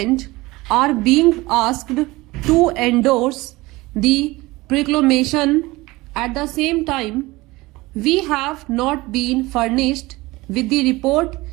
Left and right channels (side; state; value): left; quieter; 20.9 dB